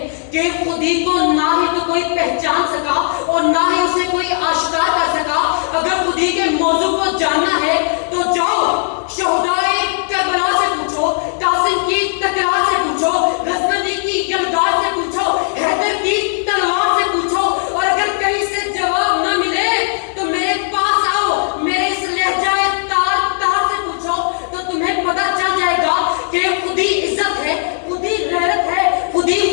کہ خودی کو نہ ہی تو کوئی پہچان سکا اور نہ ہی اسے کوئی آشکار کر سکا۔ اگر خودی کے موضوع کو جاننا ہے تو جاؤ شہدائے کربلا سے پوچھو، قاسم کی تکرار سے پوچھو، غزنوی کی یلغار سے پوچھو، حیدر کی تلوار سے پوچھو، اور اگر کہیں سے جواب نہ ملے تو میرے پاس آؤ، میرے اس لہجہ تار تار سے پوچھو، تو تمہیں پتہ چل جائے گا کہ خودی عزت ہے، خودی غیرت ہے، خودی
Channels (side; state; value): right; silent; digital silence